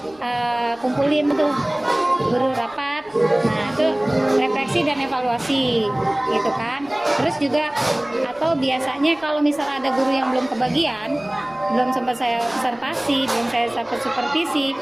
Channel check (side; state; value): right; noise; rumble, 29 dB below the sound